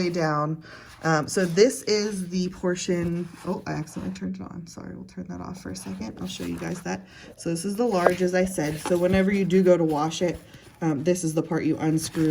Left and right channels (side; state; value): both; identical; correlation 1.00